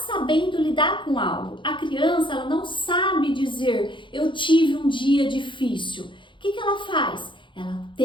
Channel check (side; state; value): right; late; 0.23 ms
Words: lidar com algo. A criança ela não sabe dizer, eu tive um dia difícil. O que ela faz? Ela